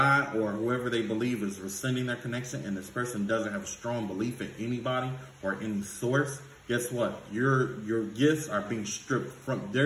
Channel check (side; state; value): both; identical; correlation 1.00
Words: or whoever they believe is rescinding their connection and this person doesn't have a strong belief in anybody or any source, guess what? Your gifts are being stripped from,